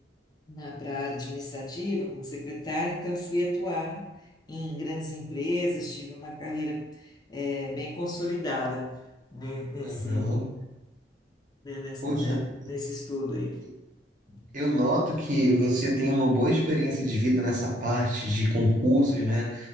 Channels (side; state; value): both; normal; correlation 0.68